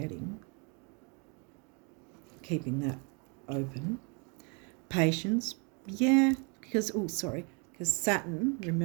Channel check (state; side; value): quieter; left; 34.4 dB